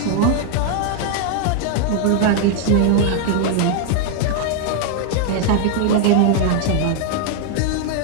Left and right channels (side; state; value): both; different; correlation 0.00